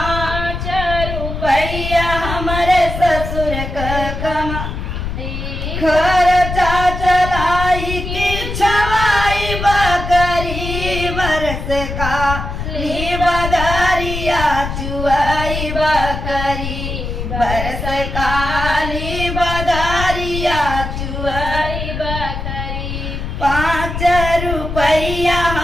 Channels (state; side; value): noise; left; rumble, 5 dB below the sound